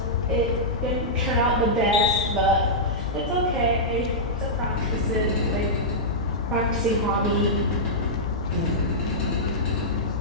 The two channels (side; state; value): both; normal; correlation -0.11